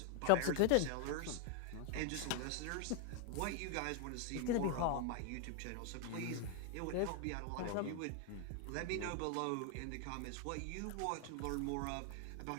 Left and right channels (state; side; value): different; both; correlation 0.00